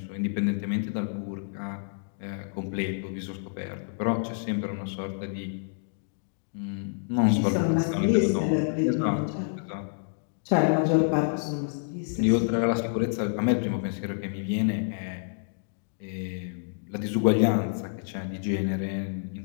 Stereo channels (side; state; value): right; silent; digital silence